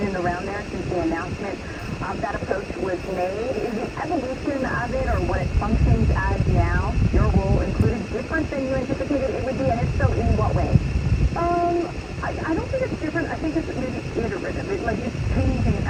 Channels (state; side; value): identical; both; correlation 1.00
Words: and around there since the announcement of that approach was made. Is the evolution of it, or what it functions as now, your role included, different than you anticipated it would be, and if so, in what way? I don't think it's different. I think it's maybe